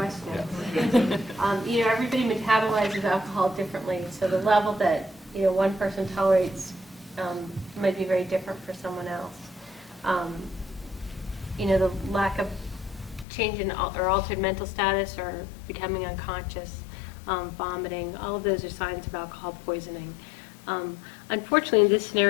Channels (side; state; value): right; drops out; at 13.2 s